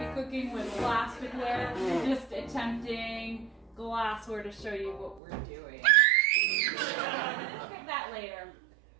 cooking with glassware. Just attempting glassware to show you what we're doing. Look at that later.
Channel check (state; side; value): drops out; left; at 5.2 s